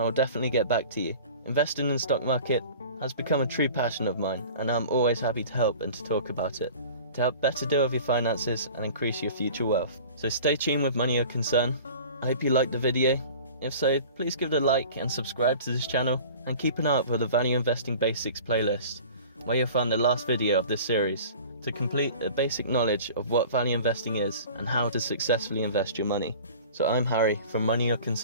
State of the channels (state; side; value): inverted; both; correlation -0.42